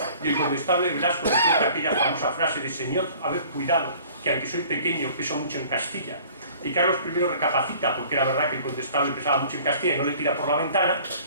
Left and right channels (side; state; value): both; inverted; correlation -0.50